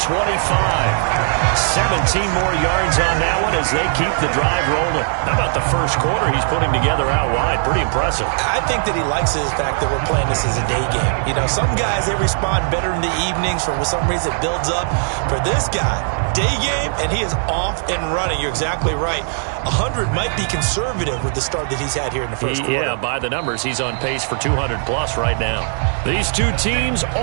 17 more yards on that one as they keep the drive rolling. How about the first quarter he's putting together out wide? Pretty impressive. I think that he likes the fact that we're playing this as a day game. You know, some guys, they respond better in the evenings. For some reason, it builds up. For this guy, day game, and he is off and running. You're exactly right. 100 might be conservative with the start that he's had here in the first quarter. Yeah, by the numbers, he's on pace for 200-plus right now. These two teams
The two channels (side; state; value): left; silent; 66 dB below the other